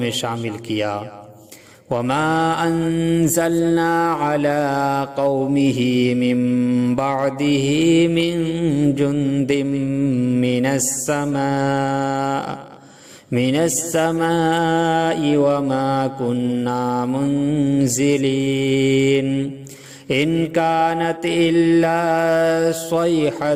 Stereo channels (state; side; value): identical; both; correlation 1.00